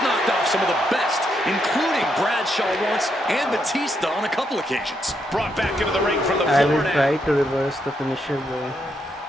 knocked off some of the best, including Bradshaw once and Batista on a couple occasions. Brought back into the ring from the I floor will try to reverse the finisher though.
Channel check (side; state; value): both; normal; correlation 0.79